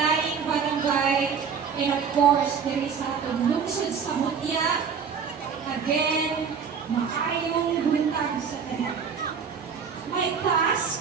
barangay, and of course, there is atong lungsod sa Mutya. Again, maayong buntag sa tanan. My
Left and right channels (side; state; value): left; quieter; 6.4 dB